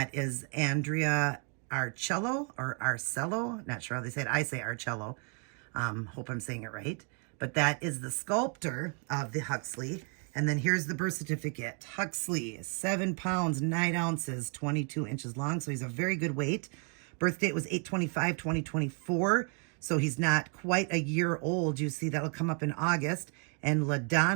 is Andrea Arcello or Arcello. Not sure how they say it. I say Arcello. Hope I'm saying it right. But that is the sculptor of the Huxley. And then here's the birth certificate. Huxley, 7 pounds, 9 ounces, 22 inches long. So he's a very good weight. Birth date was 8/25/2024. So he's not quite a year old. You see, that'll come up in August. And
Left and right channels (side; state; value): left; quieter; 39.5 dB